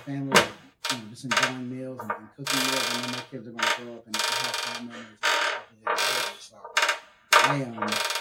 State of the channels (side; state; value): both; identical; correlation 1.00